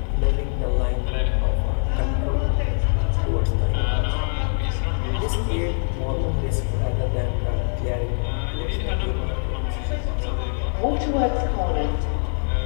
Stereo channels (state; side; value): silent; right; 58 dB below the other